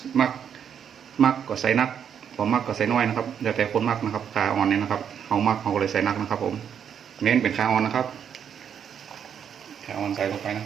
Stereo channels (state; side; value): quieter; left; 8.2 dB